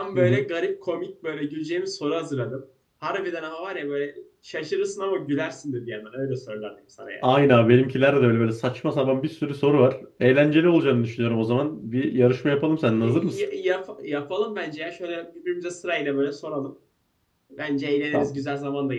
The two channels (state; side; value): identical; both; correlation 1.00